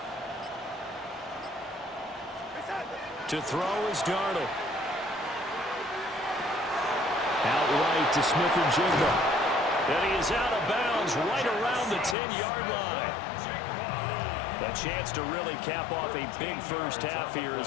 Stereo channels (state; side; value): drops out; right; at 12.2 s